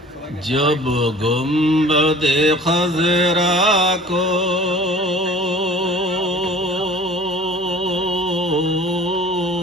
जब गुंबद खजरा को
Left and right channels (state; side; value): normal; both; correlation 0.46